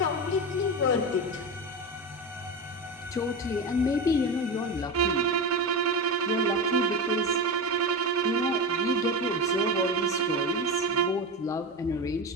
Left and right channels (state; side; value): normal; both; correlation 0.21